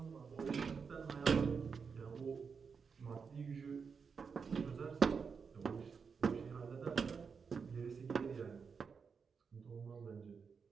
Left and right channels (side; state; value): left; quieter; 5.7 dB